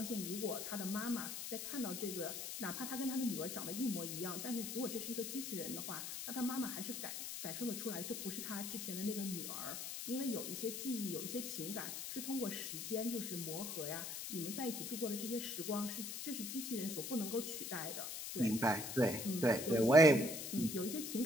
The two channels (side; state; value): left; noise; hiss, 5 dB below the sound